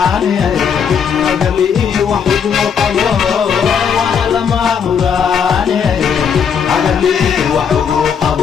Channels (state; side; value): quieter; right; 7.1 dB